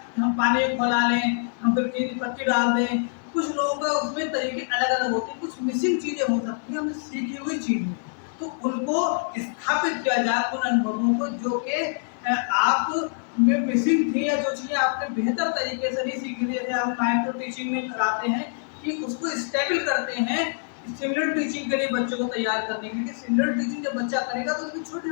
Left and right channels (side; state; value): right; silent; 62 dB below the other